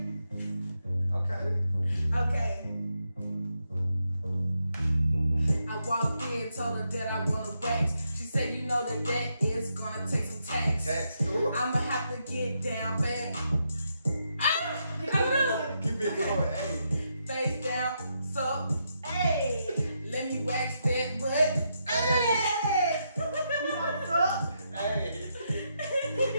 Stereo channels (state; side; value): inverted; both; correlation -0.81